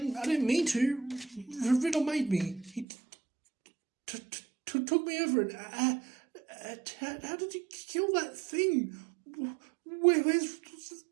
mean to. Riddle made me. He took me over and how did you kill that thing?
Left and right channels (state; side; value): drops out; left; at 2.9 s